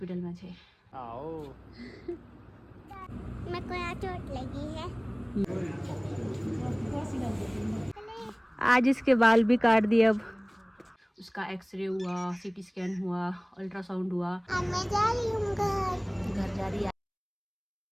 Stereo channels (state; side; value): identical; both; correlation 1.00